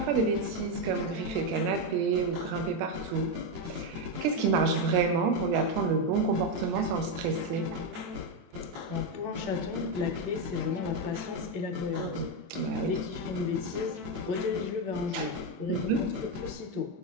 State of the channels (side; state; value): left; late; 23 ms